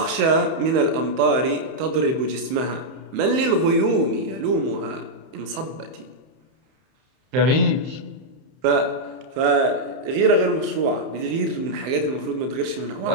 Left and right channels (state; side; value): late; left; 31 ms